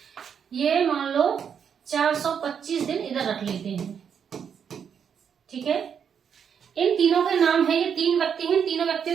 ये मान लो 425 दिन इधर रख लेते हैं, ठीक है। इन तीनों के नाम है, ये 3 व्यक्ति हैं, तीनों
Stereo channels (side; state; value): left; quieter; 7.5 dB